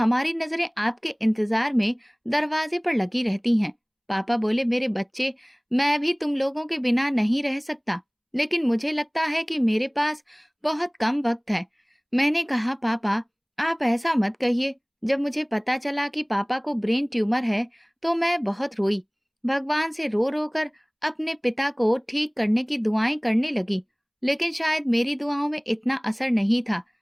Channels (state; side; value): identical; both; correlation 1.00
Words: नजरें आपके इंतजार में दरवाजे पर लगी रहती हैं। पापा बोले, मेरे बच्चे, मैं भी तुम लोगों के बिना नहीं रह सकता, लेकिन मुझे लगता है कि मेरे पास बहुत कम वक्त है। मैंने कहा, पापा, आप ऐसा मत कहिए। जब मुझे पता चला कि पापा को ब्रेन ट्यूमर है तो मैं बहुत रोई। भगवान से रो रो कर अपने पिता को ठीक करने की दुआएं करने लगी, लेकिन शायद मेरी दुआओं में इतना असर नहीं था।